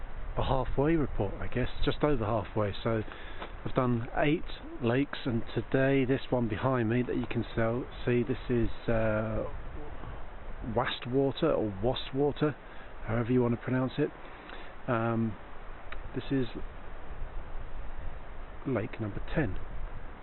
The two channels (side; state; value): both; identical; correlation 1.00